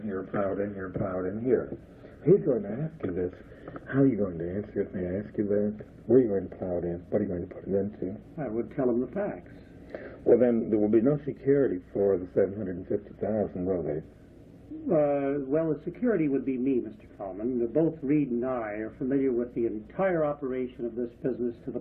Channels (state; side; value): identical; both; correlation 1.00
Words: here, plow it in here, plow it in here. He's going to ask you this. How are you going to answer it? May I ask you that? Where are you going to plow it in? What are you going to put it into? I would tell him the facts. Well, then there will be no security for the $750,000, will there? Well, the security would be me, Mr. Feldman. Both Reed and I are familiar with the entire operation of this business to the